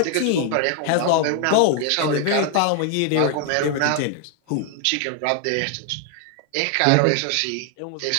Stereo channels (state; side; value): different; both; correlation 0.00